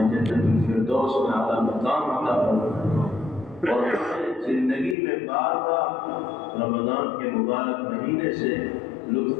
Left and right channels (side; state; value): right; drops out; at 5.0 s